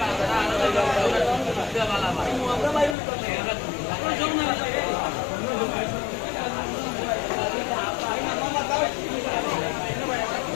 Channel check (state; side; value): drops out; right; at 3.0 s